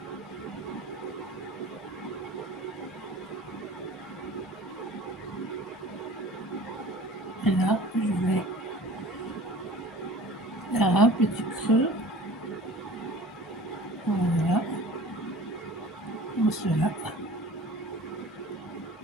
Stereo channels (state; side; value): normal; both; correlation 0.43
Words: Et là, je vais faire un petit creux. Voilà. Comme cela.